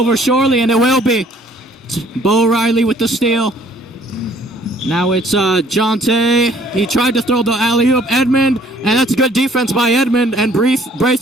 surely, and it will be. Reilly with the steal. Now it's Jatai. He tried to throw the alley-oop. Edmund, and that's good defense by Edmund, and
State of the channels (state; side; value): normal; both; correlation 0.59